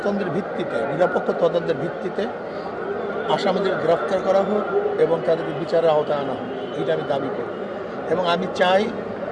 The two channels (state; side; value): identical; both; correlation 1.00